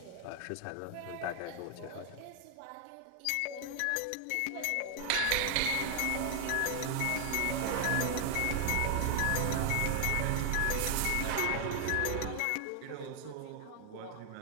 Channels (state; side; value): different; both; correlation 0.00